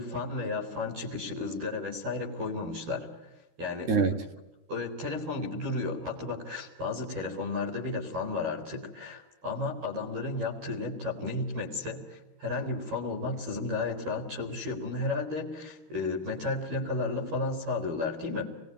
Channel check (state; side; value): late; left; 13 ms